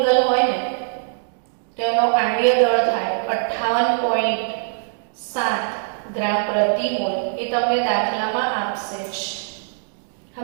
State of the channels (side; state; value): left; silent; digital silence